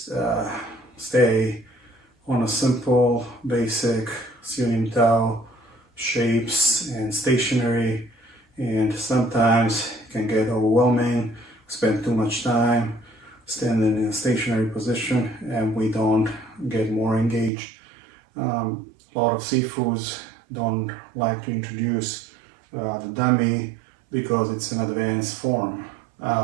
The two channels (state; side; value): drops out; left; at 17.5 s